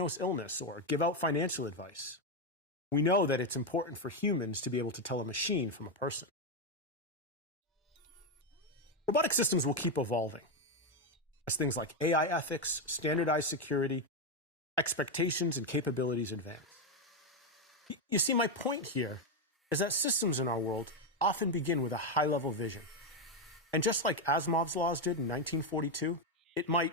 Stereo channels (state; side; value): normal; both; correlation 0.06